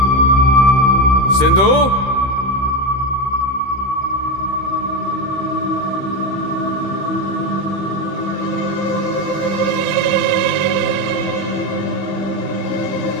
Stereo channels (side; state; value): right; late; 15 ms